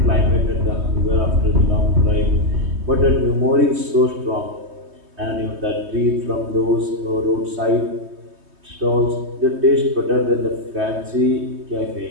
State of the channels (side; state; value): left; late; 3.2 ms